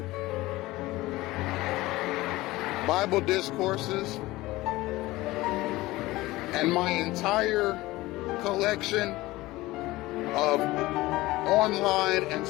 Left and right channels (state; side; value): quieter; right; 18.9 dB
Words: Bible Discourses, and my entire collection of online and